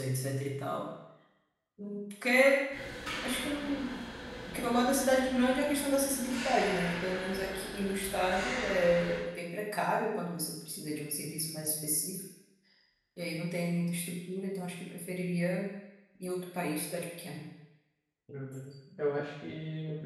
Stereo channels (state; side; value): identical; both; correlation 1.00